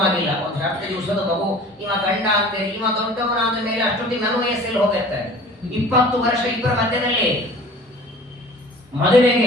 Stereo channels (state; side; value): normal; both; correlation 0.45